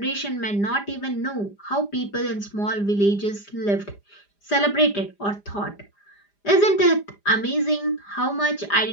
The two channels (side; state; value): right; late; 4.9 ms